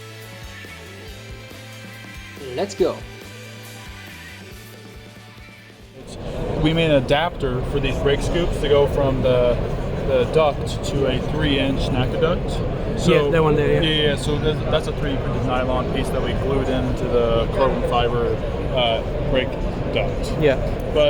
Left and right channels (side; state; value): both; identical; correlation 1.00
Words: Let's go! We made an adapter for these brake scoops to go from the duct to a 3-inch NACA duct. So, yeah, that one there, yeah. So that's a 3D printed nylon piece that we glued into the carbon fiber brake duct. Yeah.